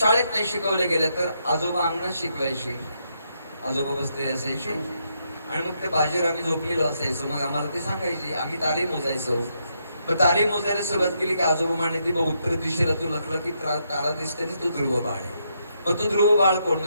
नाही शिकवल्या गेल्या तर आजोबा अंगणात शिकवायचे. आजोबा बसलेले असायचे आणि मग ते बाजीवर आम्ही झोपलेलो असायचो. मग आम्हाला ते सांगायचे, आम्ही तारे मोजायचो. मग तारे मोजायला सुरुवात केली की आजोबा म्हणायचे बघ उत्तर दिशेला तू लखलं की तारा दिसते ना, तो ध्रुव बाळ आहे. मग तो ध्रुव बाळ कोण?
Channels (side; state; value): both; inverted; correlation -0.78